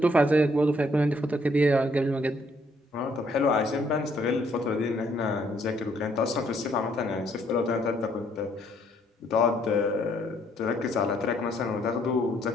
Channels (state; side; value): normal; both; correlation 0.68